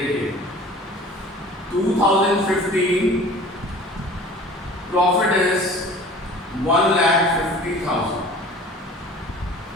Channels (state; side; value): normal; both; correlation 0.44